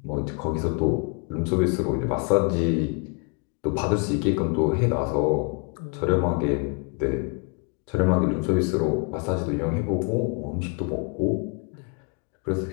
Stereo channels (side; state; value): right; quieter; 34.7 dB